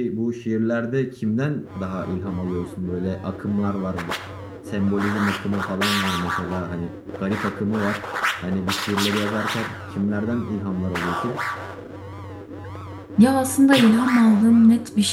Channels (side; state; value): both; identical; correlation 1.00